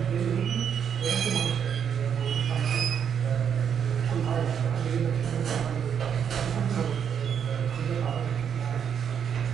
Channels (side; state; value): left; quieter; 7.9 dB